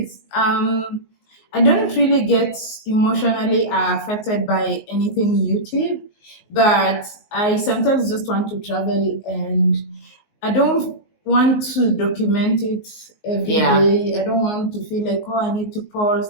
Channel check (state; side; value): late; right; 19 ms